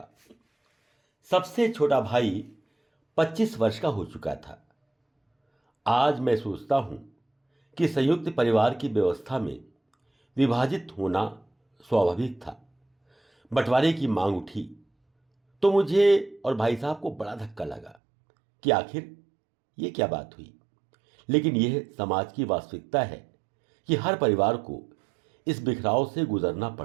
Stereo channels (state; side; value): drops out; left; at 17.9 s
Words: सबसे छोटा भाई 25 वर्ष का हो चुका था। आज मैं सोचता हूं कि संयुक्त परिवार की व्यवस्था में विभाजित होना स्वाभाविक था। बंटवारे की मांग उठी तो मुझे और भाई साहब को बड़ा धक्का लगा कि आखिर ये क्या बात हुई। लेकिन यह समाज की वास्तविकता है कि हर परिवार को इस बिखराव से गुजरना